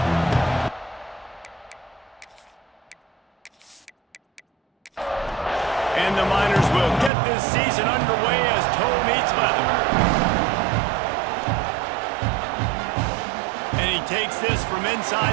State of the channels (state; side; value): drops out; left; at 7.1 s